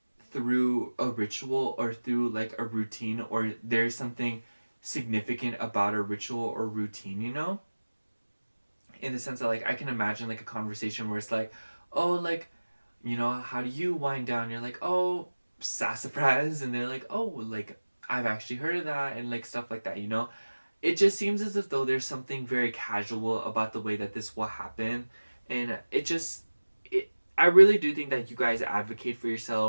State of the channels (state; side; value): inverted; both; correlation -1.00